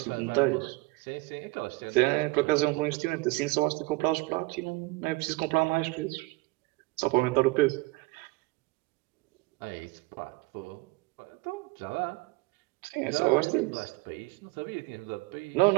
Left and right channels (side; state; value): left; quieter; 23.0 dB